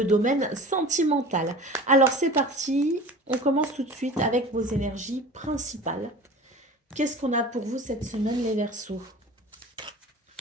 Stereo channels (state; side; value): normal; both; correlation 0.39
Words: domaine sentimental. Alors c'est parti, on commence tout de suite avec vos énergies principales. Qu'est-ce qu'on a pour vous cette semaine, les Verseaux?